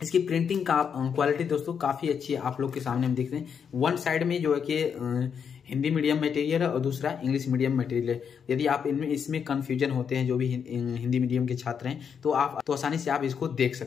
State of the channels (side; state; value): right; quieter; 7.1 dB